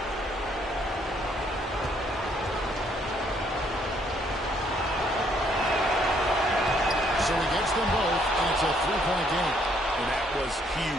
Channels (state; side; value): normal; both; correlation 0.68